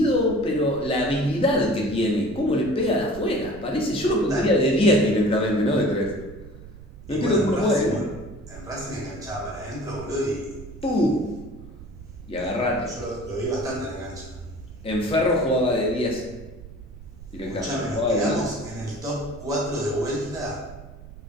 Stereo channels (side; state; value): right; noise; rumble, 16 dB below the sound